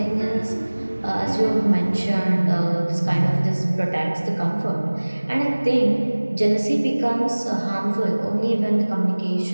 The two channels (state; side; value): inverted; both; correlation -1.00